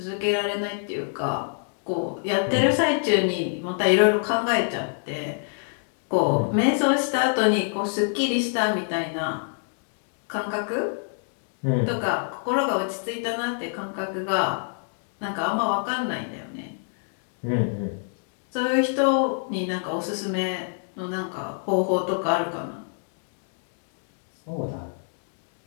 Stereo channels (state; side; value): silent; right; digital silence